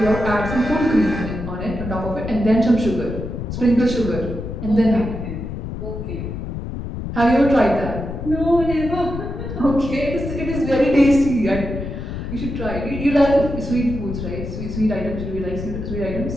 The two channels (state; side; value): noise; left; rumble, 6 dB below the sound